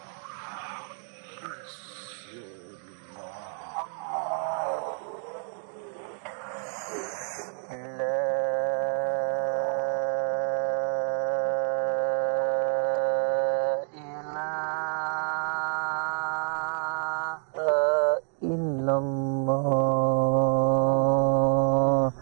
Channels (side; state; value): left; silent; 56 dB below the other